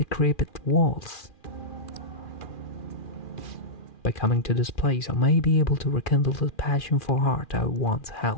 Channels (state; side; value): late; right; 2.4 ms